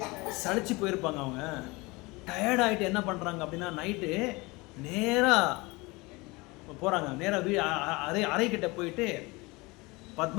சளிச்சு போயிருப்பாங்க. அவங்க டயர்ட் ஆகிட்டு என்ன பண்ணுறாங்க அப்படின்னா, நைட்டு நேராக போகிறாங்க, நேராக அறைக்கிட்ட போயிட்டு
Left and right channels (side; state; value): right; quieter; 24.1 dB